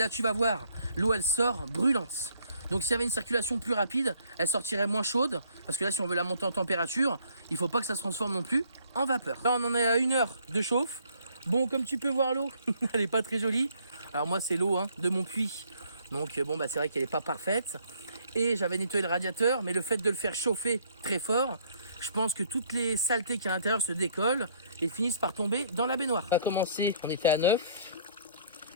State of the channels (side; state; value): both; inverted; correlation -0.63